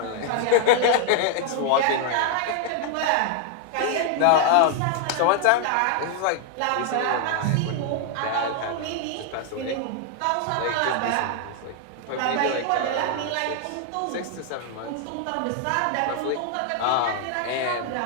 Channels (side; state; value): both; different; correlation 0.00